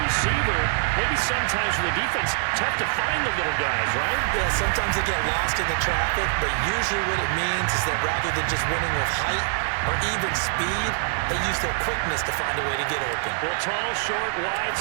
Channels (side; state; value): left; silent; digital silence